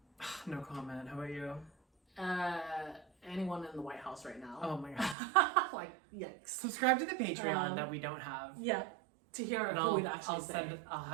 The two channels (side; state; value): left; drops out; at 5.2 s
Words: No comment. How about you? anyone in the White House right now. Oh my god. Like, yikes. Subscribe to the Patreon that we don't have. Yeah. To hear And who we'd actually say. I'll